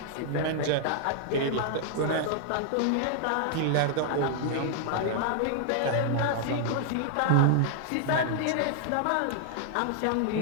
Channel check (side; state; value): both; different; correlation -0.01